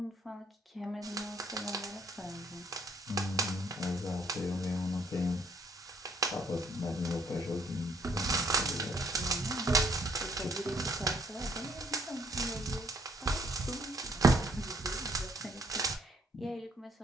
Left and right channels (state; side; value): normal; both; correlation 0.65